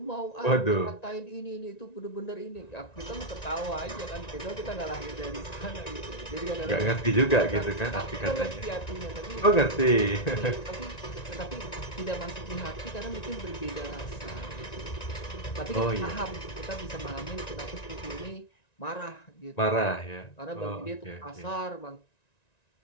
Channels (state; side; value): late; right; 1.9 ms